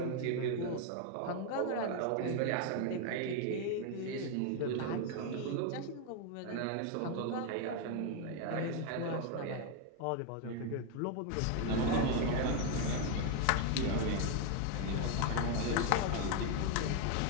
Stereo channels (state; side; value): different; both; correlation 0.01